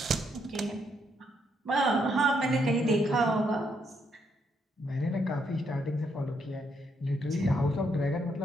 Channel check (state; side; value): normal; both; correlation 0.75